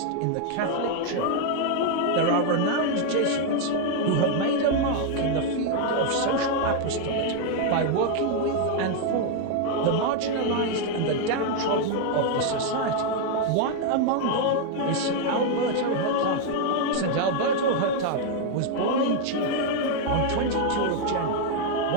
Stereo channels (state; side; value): different; both; correlation 0.00